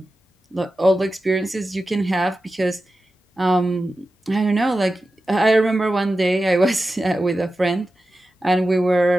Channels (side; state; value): both; normal; correlation 0.93